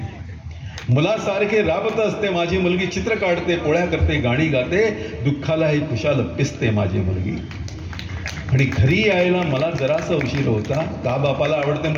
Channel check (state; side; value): identical; both; correlation 1.00